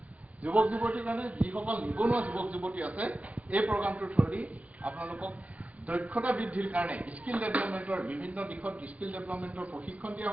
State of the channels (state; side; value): late; left; 0.068 ms